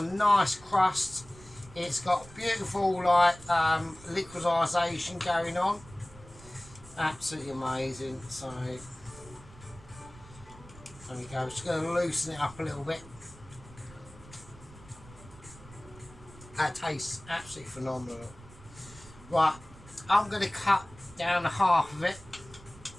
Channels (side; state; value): right; noise; rumble, 20 dB below the sound